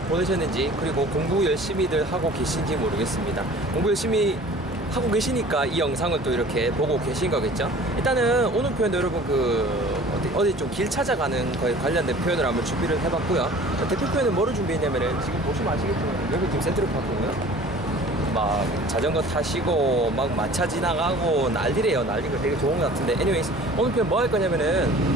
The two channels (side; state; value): both; normal; correlation 0.46